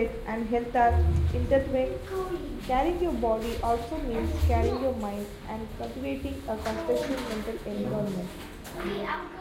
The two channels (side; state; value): both; identical; correlation 1.00